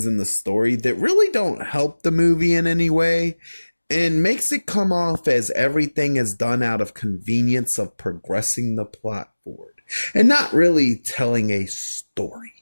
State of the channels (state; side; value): inverted; both; correlation -1.00